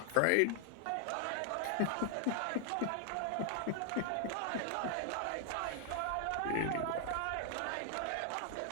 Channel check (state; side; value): different; both; correlation 0.00